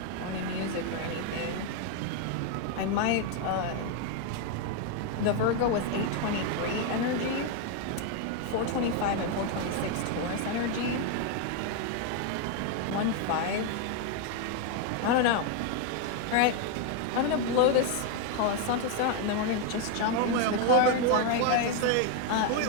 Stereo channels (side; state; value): both; different; correlation 0.01